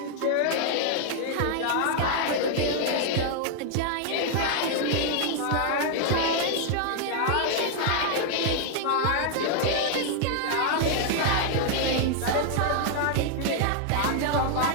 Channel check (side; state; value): both; different; correlation 0.00